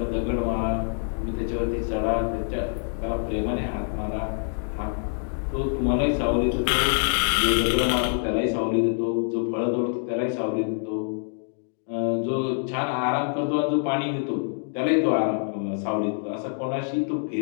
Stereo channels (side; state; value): right; silent; digital silence